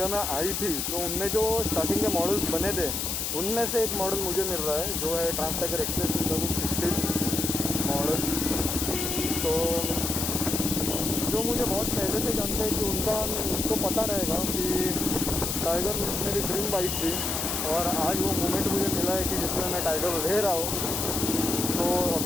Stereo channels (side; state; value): left; noise; hiss, 1 dB below the sound